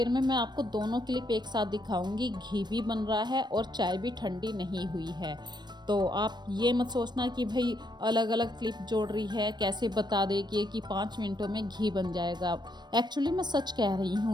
में मैं आपको दोनों क्लिप एक साथ दिखाऊंगी। घी भी बन रहा है और चाय भी ठंडी नहीं हुई है। तो आप ये मत सोचना कि भाई अलग अलग क्लिप जोड़ रही है, कैसे बता देगी कि 5 मिनटों में घी बन जाएगा। एक्चुअली मैं सच कह रही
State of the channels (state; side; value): late; left; 0.21 ms